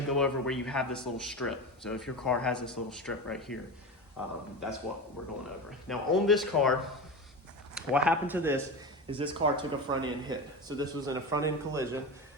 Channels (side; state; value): both; normal; correlation 0.24